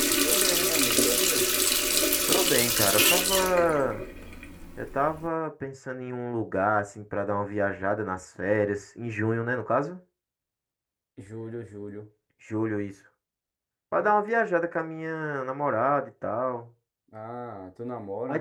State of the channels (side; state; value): both; identical; correlation 1.00